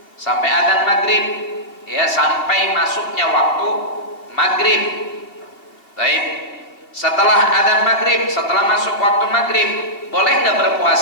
sampai adzan maghrib, ya, sampai masuknya waktu maghrib. Baik. Setelah adzan maghrib, setelah masuk waktu maghrib, boleh nggak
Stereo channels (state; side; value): late; right; 2.6 ms